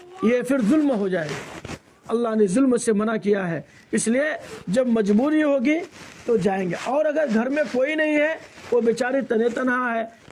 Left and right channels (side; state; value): both; identical; correlation 1.00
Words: یہ پھر ظلم ہو جائے گا۔ اللہ نے ظلم سے منع کیا ہے، اس لیے جب مجبوری ہوگی تو جائیں گے۔ اور اگر گھر میں کوئی نہیں ہے، وہ بیچاری تنہا ہے،